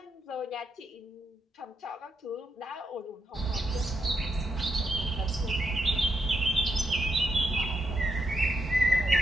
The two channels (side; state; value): both; normal; correlation 0.81